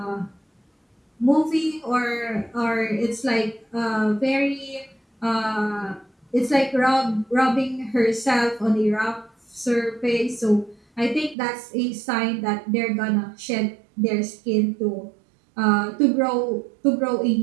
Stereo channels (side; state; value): left; drops out; at 11.4 s